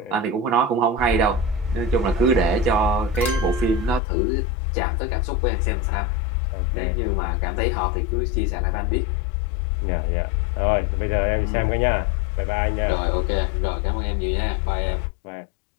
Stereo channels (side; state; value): right; drops out; at 4.0 s